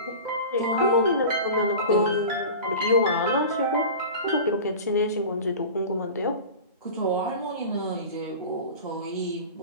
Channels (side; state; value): both; inverted; correlation -0.34